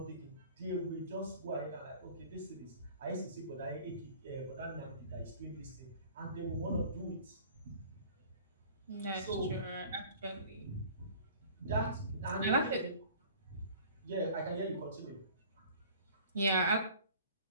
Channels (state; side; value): inverted; both; correlation -0.47